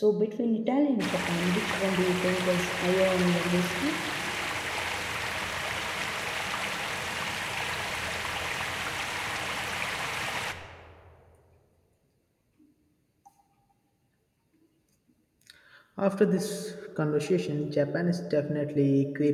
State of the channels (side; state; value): both; identical; correlation 1.00